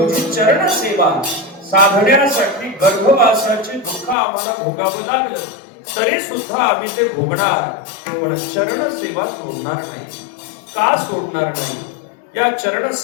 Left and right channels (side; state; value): right; drops out; at 4.2 s